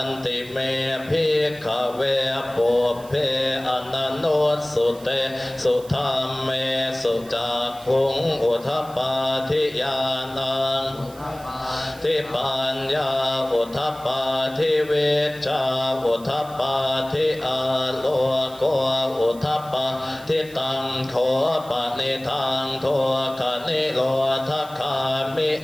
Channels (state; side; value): noise; right; hiss, 21 dB below the sound